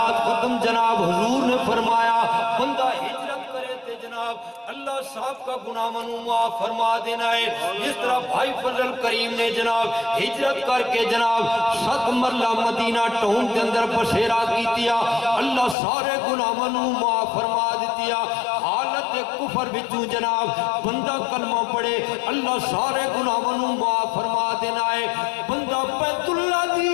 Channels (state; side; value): drops out; right; at 15.8 s